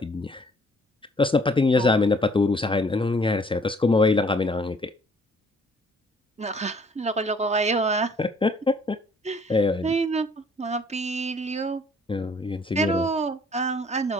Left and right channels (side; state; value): both; normal; correlation 0.59